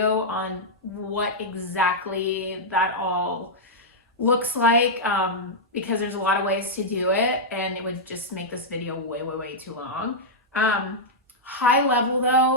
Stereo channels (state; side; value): normal; both; correlation -0.07